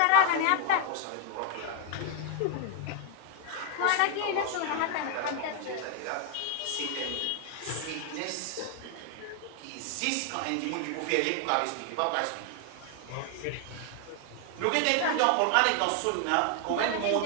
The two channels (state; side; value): different; both; correlation 0.00